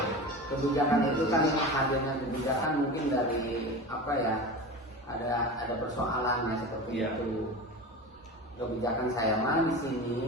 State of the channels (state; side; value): normal; both; correlation 0.30